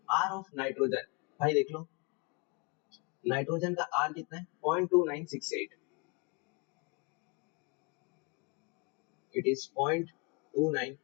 आर ऑफ नाइट्रोजन, भाई देख लो नाइट्रोजन का आर कितना है 0.2968, it is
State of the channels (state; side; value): quieter; right; 31.9 dB